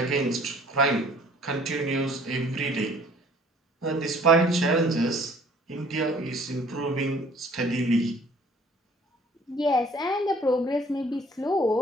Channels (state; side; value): normal; both; correlation 0.55